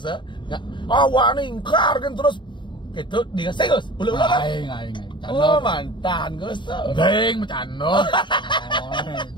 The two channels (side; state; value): right; late; 0.23 ms